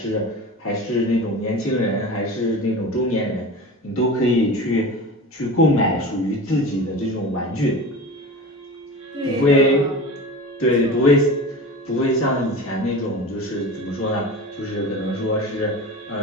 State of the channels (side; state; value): both; normal; correlation 0.32